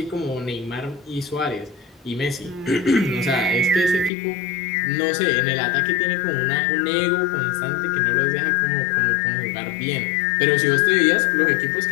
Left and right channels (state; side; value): drops out; right; at 4.1 s